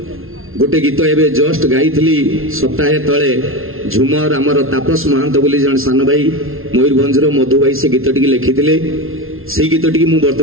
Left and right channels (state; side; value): late; left; 0.61 ms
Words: गोटे गीत एवं जस्ट गाई सप्ताहे तले झुमर आमर तापस महांत बोली जन सान भाई मयूरभंजर मधु भाई से गीत टी लिखिले से गीत टी